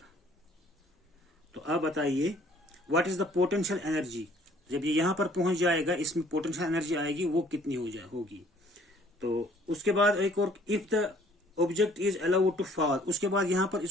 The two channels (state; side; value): normal; both; correlation 0.58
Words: तो अब बताइए what is the potential energy. जब ये यहाँ पर पहुंच जाएगा, इसमें पोटेंशियल एनर्जी आएगी, वो कितनी होगी। तो उसके बाद एक और, if the object is allowed to fall, उसके बाद यहाँ पर